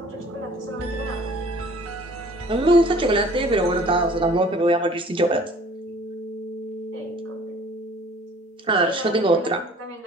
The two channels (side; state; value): both; normal; correlation 0.52